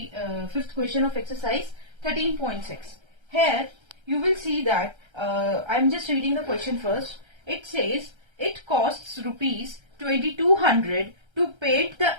fifth question of exercise 13.6. Here you will see that I'm just reading the question first. It says it costs rupees 2200 to paint the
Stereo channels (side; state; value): left; late; 1.3 ms